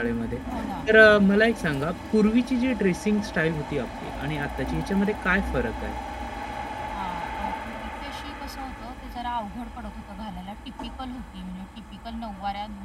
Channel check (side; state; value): both; identical; correlation 1.00